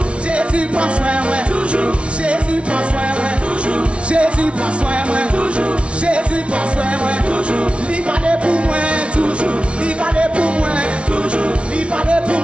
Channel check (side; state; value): left; late; 0.060 ms